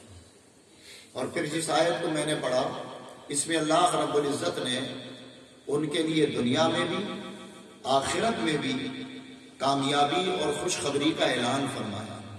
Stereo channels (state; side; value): identical; both; correlation 1.00